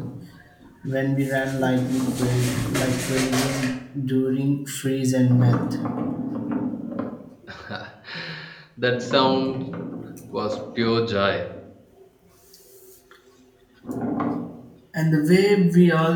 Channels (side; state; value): both; identical; correlation 1.00